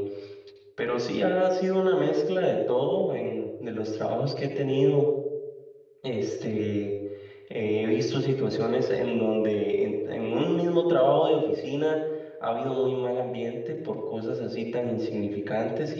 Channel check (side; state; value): both; identical; correlation 1.00